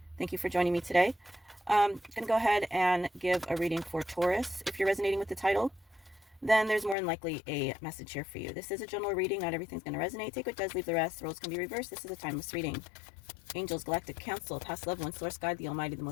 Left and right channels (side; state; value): right; drops out; at 7.0 s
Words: Thank you for joining me today. I'm going to go ahead and give a reading for Taurus. If you're resonating with the title, then there's more than likely a message here for you. This is a general reading. Not everything's going to resonate. Take what does, leave the rest. Roles can be reversed. This is a timeless reading. Angels, Galactic Council, Past Loved Ones, Source God, the Almighty, the